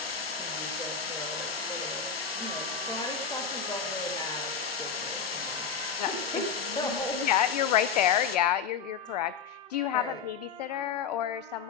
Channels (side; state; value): right; quieter; 6.7 dB